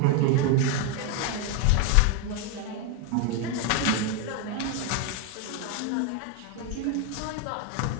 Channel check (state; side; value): different; both; correlation 0.02